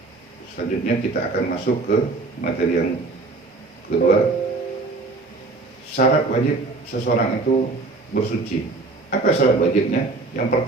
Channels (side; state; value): left; quieter; 3.6 dB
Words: Selanjutnya kita akan masuk ke materi yang kedua. Syarat wajib seseorang itu bersuci. Apa syarat wajibnya? Yang